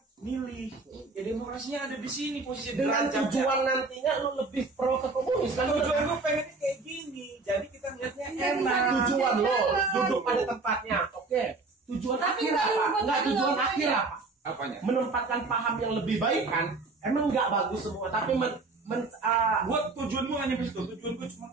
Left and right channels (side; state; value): left; quieter; 3.8 dB